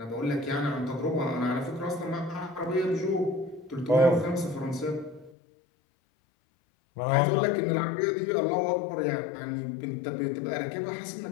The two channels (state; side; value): drops out; right; at 5.4 s